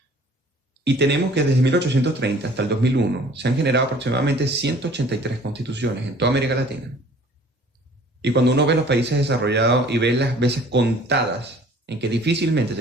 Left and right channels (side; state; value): both; normal; correlation 0.52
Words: y tenemos que desde 1830 hasta el 2001 se han generado aproximadamente 183 constituciones en toda América Latina. Y cuando uno ve los países desarrollados y ve las veces contadas en que difícilmente